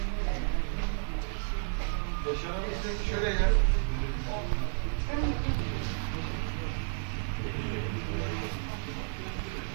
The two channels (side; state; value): left; silent; 56 dB below the other